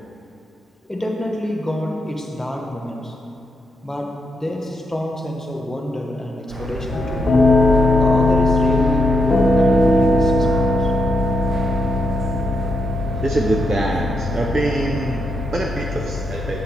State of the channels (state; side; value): normal; both; correlation 0.81